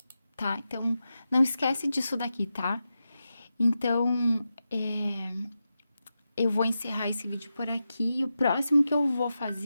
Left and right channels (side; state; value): both; inverted; correlation -0.90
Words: tá? Então, não esquece disso daqui, tá? Então, eu vou encerrar esse vídeo por aqui. O próximo que eu vou